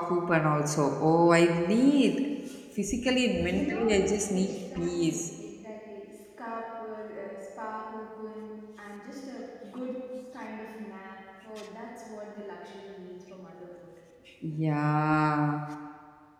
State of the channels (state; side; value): identical; both; correlation 1.00